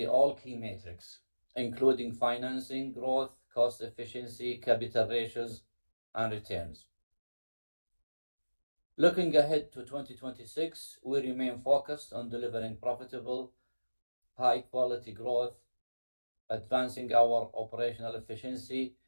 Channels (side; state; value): both; inverted; correlation -1.00